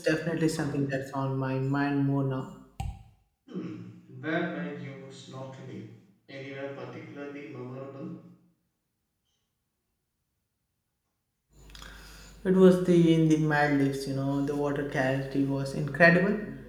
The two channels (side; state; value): both; identical; correlation 1.00